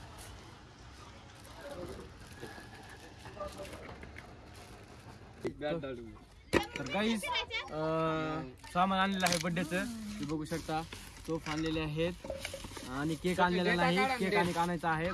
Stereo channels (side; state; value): both; identical; correlation 1.00